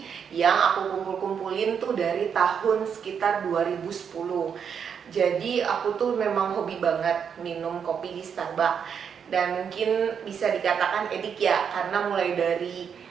yang aku kumpulin tuh dari tahun sekitar 2010. Jadi aku tuh memang hobi banget minum kopi di Starbucks. Dan mungkin bisa dikatakan edik ya, karena mulai dari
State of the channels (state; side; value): quieter; left; 7.3 dB